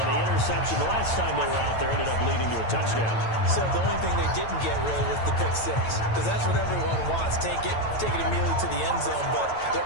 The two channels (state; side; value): late; right; 9.0 ms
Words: the interception the last time they were out there ended up leading to a touchdown. So the only thing they didn't get really was the pick 6, because that's what everyone wants. Take it immediately to the end zone, but their